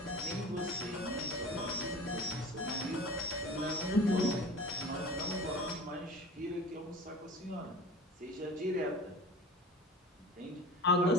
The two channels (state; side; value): normal; both; correlation 0.38